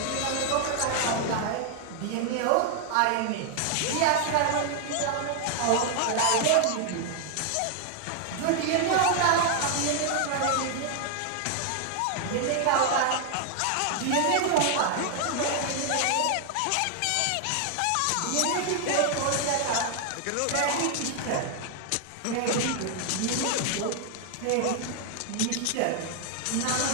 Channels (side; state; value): both; different; correlation 0.00